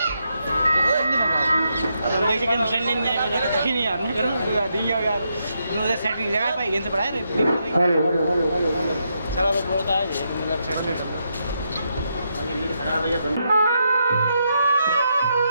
सेटिंग जगह पे गेंद पड़ा है चलो वो बोलता है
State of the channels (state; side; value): inverted; both; correlation -0.81